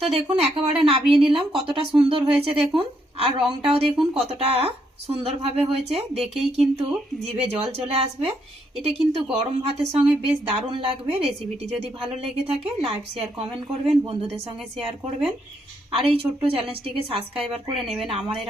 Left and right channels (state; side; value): normal; both; correlation 0.75